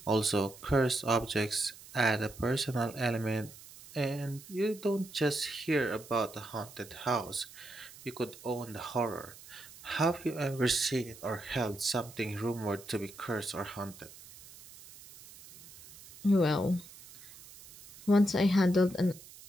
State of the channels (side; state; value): right; noise; hiss, 19 dB below the sound